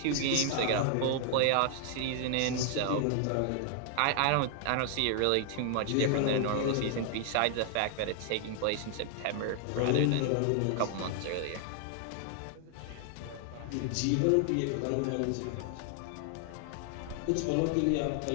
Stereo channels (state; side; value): different; both; correlation 0.00